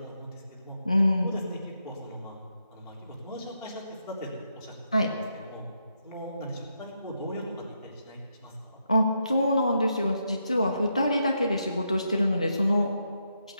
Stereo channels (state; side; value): inverted; both; correlation -0.81